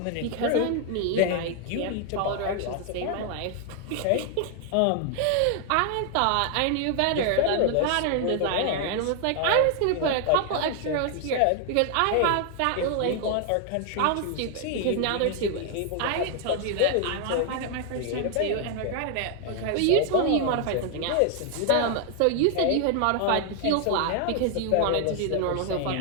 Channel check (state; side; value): different; both; correlation 0.00